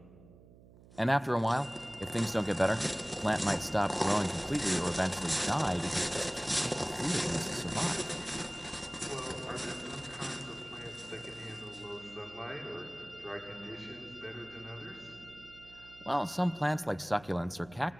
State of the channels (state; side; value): noise; right; hum, 22 dB below the sound